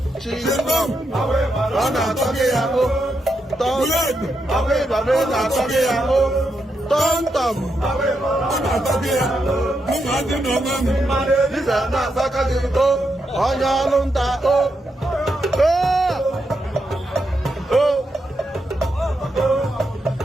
ọ na-atọ gị ya ọbịbọbị na-atọ gị ya tọmtọm ọ na-atọ gị ya mụma dị n'ọma m diza na-atọka gị onye ọrụ nta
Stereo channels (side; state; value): both; normal; correlation 0.83